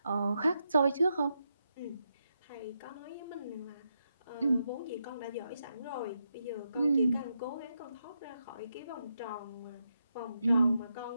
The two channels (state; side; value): inverted; both; correlation -0.84